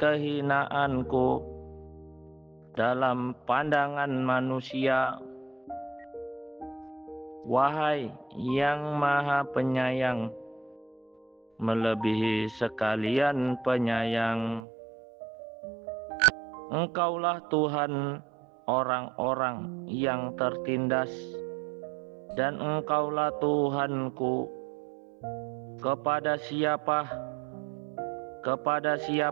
dalam pandangan manusia. Wahai yang Maha Penyayang, melebihi sekalian penyayang, Engkaulah Tuhan orang-orang yang tertindas, dan Engkaulah Tuhanku. Kepada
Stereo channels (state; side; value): drops out; left; at 14.6 s